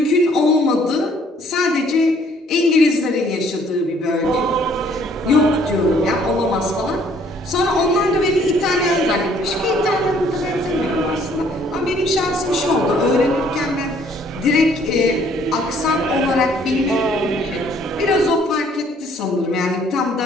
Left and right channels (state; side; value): normal; both; correlation 0.61